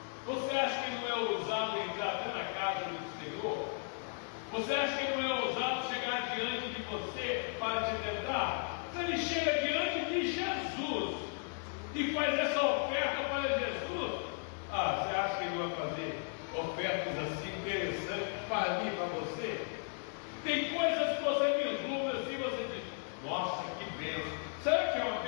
você acha que não é ousado entrar até na casa do Senhor? Você acha que não é ousado chegar diante de você para te tentar? Se ele chega diante de Jesus e faz essa oferta para Jesus, você acha que ele vai fazer ofertas assim interessantes para mim e para você? Tem coisas que você vislumbra assim, você diz: nossa, que bênção. Será que é uma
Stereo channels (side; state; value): right; silent; 54 dB below the other